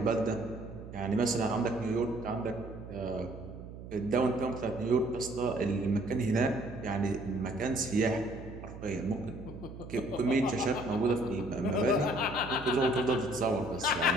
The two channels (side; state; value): right; noise; hum, 13 dB below the sound